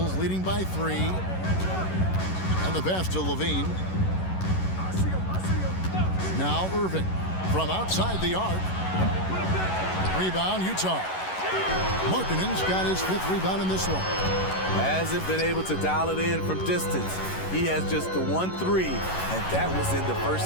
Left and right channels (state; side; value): late; right; 11 ms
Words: leading by 3. And the pass to Levine. Now Irving from outside the arc. Rebound, Utah. Markkanen's got his 5th rebound in this one. Hasn't been able to dial it in from distance. He has just the 1-3, and that was in the first